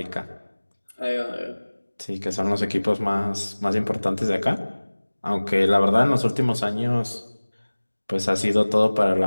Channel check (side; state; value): both; inverted; correlation -1.00